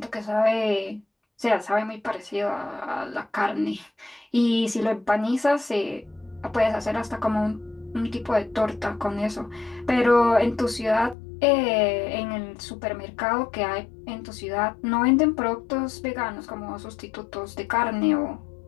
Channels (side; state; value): right; drops out; at 11.2 s